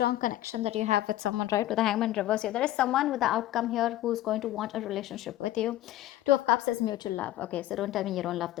connection that you have with someone, right? With the Hangman reverse here, there is someone with the outcome here who's going to want a relationship with you. Two of Cups is mutual love. Okay, so don't tell me you don't love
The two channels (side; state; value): right; quieter; 14.3 dB